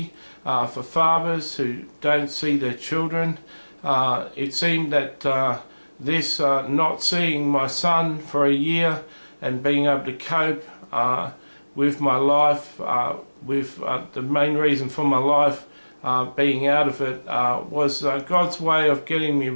for fathers who don't see their children. It seemed that this not seeing my son for a year and being able to cope with my life, with the main reason for my life being out of it, was God's way of getting me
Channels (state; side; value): inverted; both; correlation -1.00